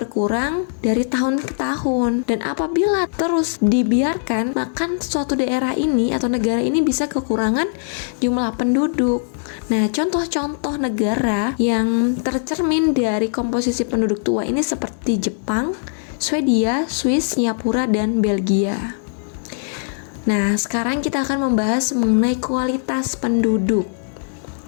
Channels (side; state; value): right; silent; 64 dB below the other